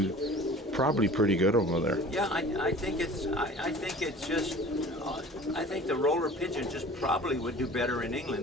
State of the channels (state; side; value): normal; both; correlation 0.44